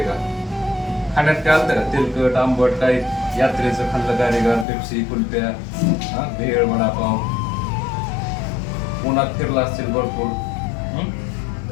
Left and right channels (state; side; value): drops out; right; at 4.7 s